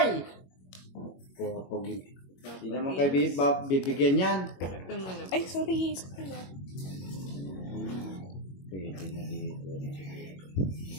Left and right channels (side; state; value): right; late; 21 ms